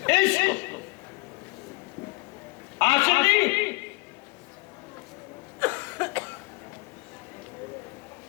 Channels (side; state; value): right; quieter; 24.9 dB